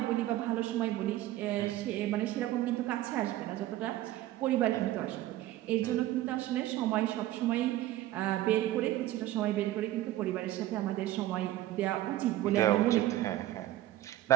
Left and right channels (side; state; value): left; quieter; 14.8 dB